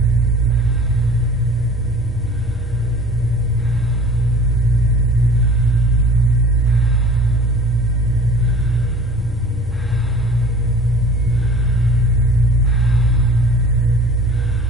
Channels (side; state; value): left; noise; rumble, 17 dB below the sound